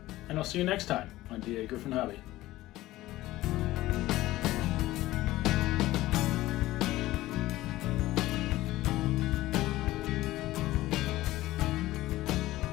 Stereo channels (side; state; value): right; quieter; 16.6 dB